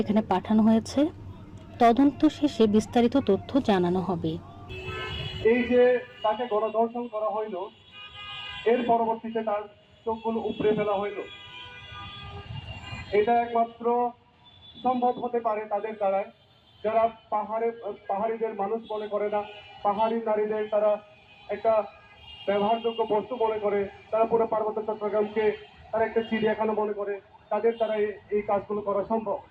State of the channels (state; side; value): identical; both; correlation 1.00